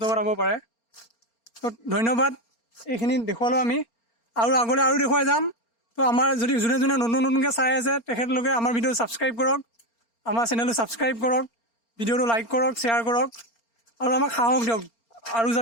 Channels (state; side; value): late; right; 4.3 ms